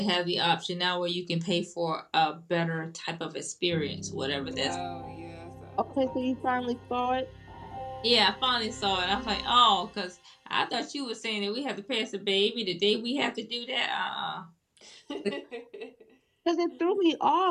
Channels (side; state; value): both; identical; correlation 1.00